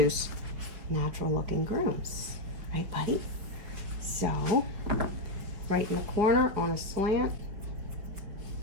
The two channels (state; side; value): late; left; 5.4 ms